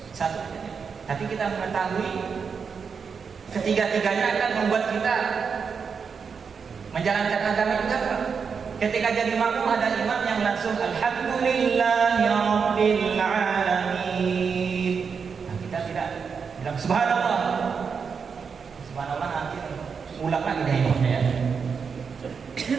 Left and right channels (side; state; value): left; quieter; 5.9 dB